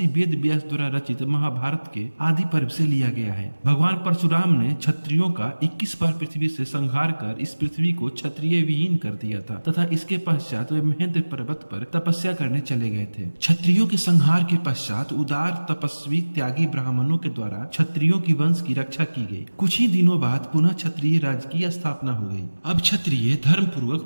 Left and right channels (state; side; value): inverted; both; correlation -1.00